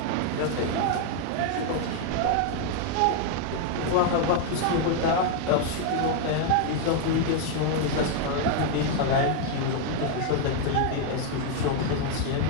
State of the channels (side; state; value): both; different; correlation 0.00